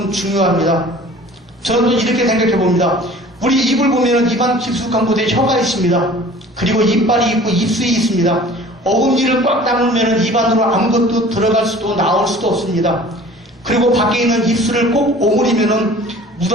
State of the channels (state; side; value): normal; both; correlation 0.46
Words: 중요합니다. 저는 이렇게 생각해 봅니다. 우리 입을 보면 입안 깊숙한 곳에 혀가 있습니다. 그리고 이빨이 있고 입술이 있습니다. 어금니를 꽉 다물면 입안으로 아무것도 들어갈 수도 나올 수도 없습니다. 그리고 밖에 있는 입술을 꼭 오므리면 물